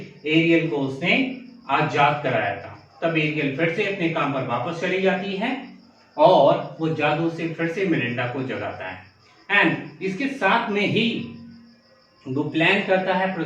एरियल को उसने आजाद कराया था। तब एरियल फिर से अपने काम पर वापस चली जाती है और वो जादू से फिर से मिरिंडा को जगाता है। एंड इसके साथ में ही वो प्लान करता है,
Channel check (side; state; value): both; identical; correlation 1.00